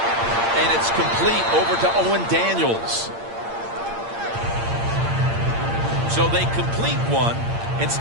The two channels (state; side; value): late; left; 8.7 ms